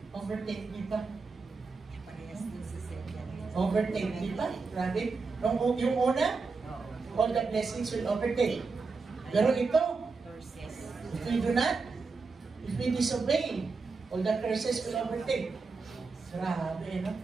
Overtake thee ba? Overtake thee ba? Grabe. Yung una, all the blessings will overtake. Pero ito, if we do not, if we disobey, all the curses will overtake. Grabe, no?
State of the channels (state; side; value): quieter; left; 4.4 dB